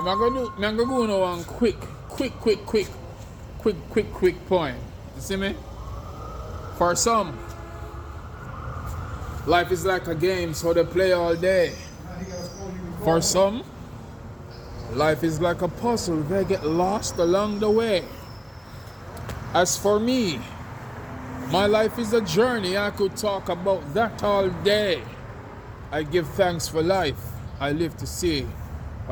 I'm gonna go on one quick poem. You see me? For some, life is like a game, so they play all day. For some, life is like a puzzle, they get lost along the way. As for me, my life is a journey, I could talk about that all day. I give thanks for life, I live to see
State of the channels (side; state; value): both; identical; correlation 1.00